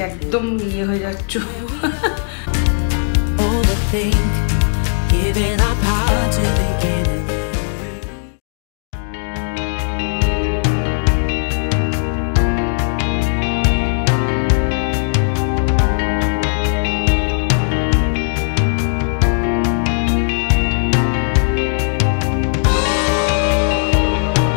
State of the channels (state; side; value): silent; right; digital silence